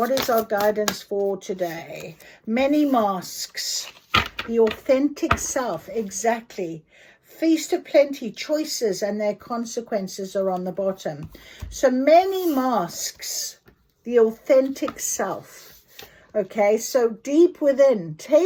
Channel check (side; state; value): both; identical; correlation 1.00